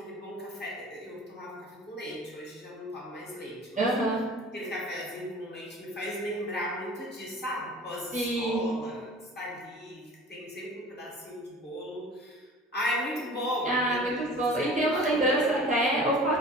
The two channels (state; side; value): normal; both; correlation 0.43